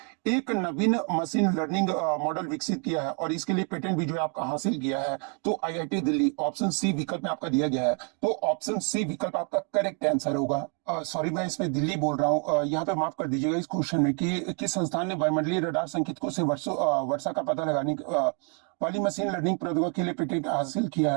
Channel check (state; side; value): quieter; left; 37.8 dB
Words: एक नवीन मशीन लर्निंग मॉडल विकसित किया है और इसके लिए पेटेंट भी जो है आपका हासिल किया है। तो आईआईटी दिल्ली ऑप्शन सी विकल्प में आपका दिया गया है। तो ऑप्शन सी विकल्प आपका करेक्ट आंसर होगा। सॉरी मैं इसमें दिल्ली बोल रहा हूँ, यहाँ पे माफ कर दीजिएगा इस क्वेश्चन में कि किस संस्थान ने वायुमंडलीय रडार संकेतकों से वर्षा का पता लगाने वाली मशीन लर्निंग प्रौद्योगिकी के लिए पेटेंट हासिल किया